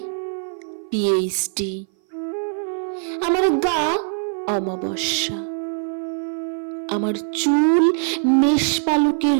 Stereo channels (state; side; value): silent; left; 59 dB below the other